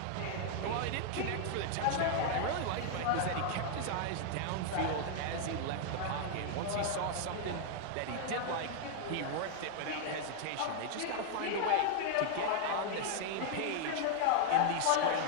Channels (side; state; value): both; different; correlation 0.00